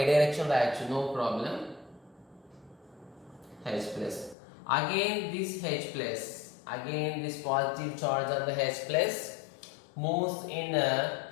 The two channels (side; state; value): right; drops out; at 4.4 s